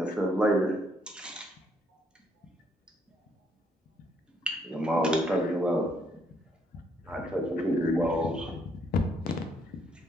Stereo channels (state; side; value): normal; both; correlation 0.70